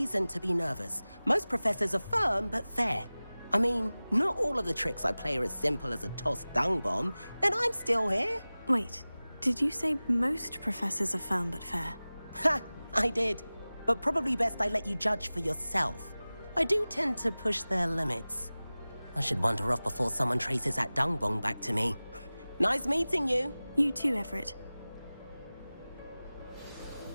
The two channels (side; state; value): both; inverted; correlation -0.98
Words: to be nervous. Most professors are firm but fair. I mean, not all of the tricks I play are as simple as a tossed dung bomb, and I'm still here. Wait, did you say most professors are firm but fair? Ha! I did. But probably best I let you judge for yourself. I do tend to push their limits. I should wander off before someone traces that dung bomb back to me. Nice meeting you. You too, Everett.